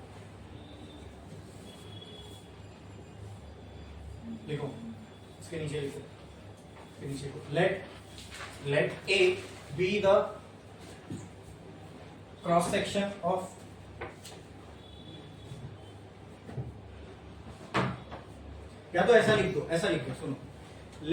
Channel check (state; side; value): identical; both; correlation 1.00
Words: लिखो, इसके नीचे लिखो, इसके नीचे लिखो, let A B the cross section of या तो ऐसा लिख दो, ऐसा लिख दो, सुनो,